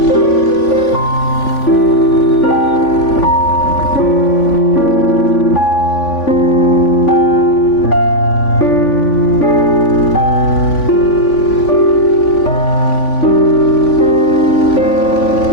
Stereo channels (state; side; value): late; right; 3.5 ms